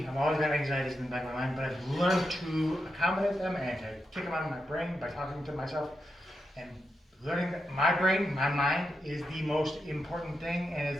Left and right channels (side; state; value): both; normal; correlation 0.86